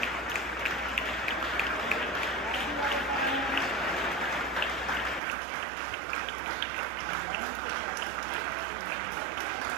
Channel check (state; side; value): drops out; left; at 5.2 s